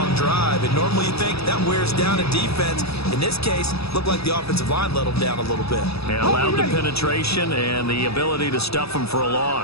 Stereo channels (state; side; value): late; right; 0.78 ms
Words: drive, and normally you think that wears down a defense. In this case, looked like the offensive line let them down a little bit. And allowed the penetration and the ability to stuff them for a